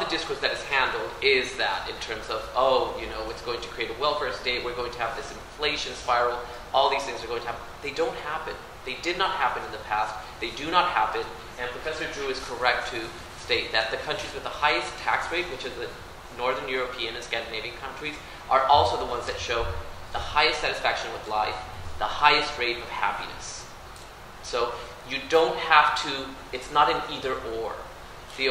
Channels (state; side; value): identical; both; correlation 1.00